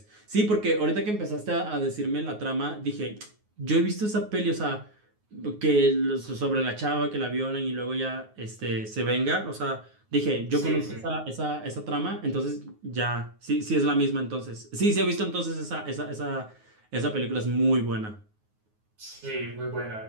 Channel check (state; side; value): late; left; 9.5 ms